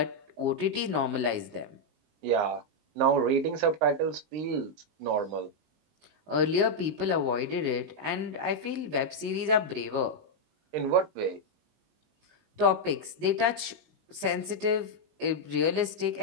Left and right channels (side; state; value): left; late; 19 ms